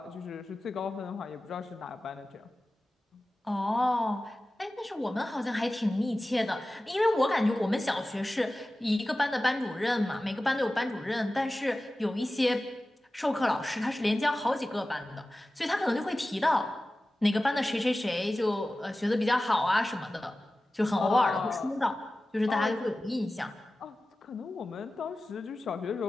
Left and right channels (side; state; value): both; normal; correlation 0.96